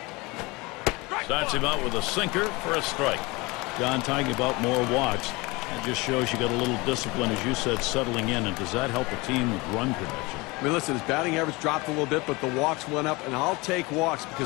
Starts him out with a sinker for a strike. John talking about more walks. It just shows you got a little discipline, as you said, settling in. And does that help a team with run production? I mean, listen, his batting average dropped a little bit, but the walks went up, and I'll take walks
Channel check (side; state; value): right; quieter; 24.4 dB